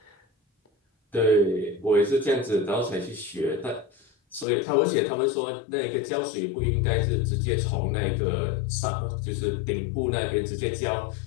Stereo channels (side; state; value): right; drops out; at 4.5 s